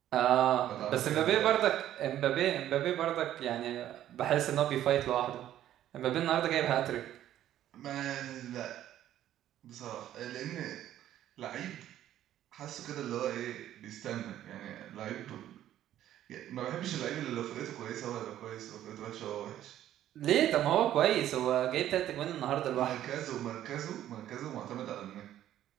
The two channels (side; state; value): left; quieter; 12.1 dB